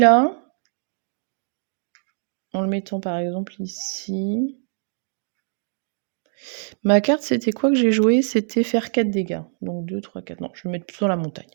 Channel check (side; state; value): left; silent; digital silence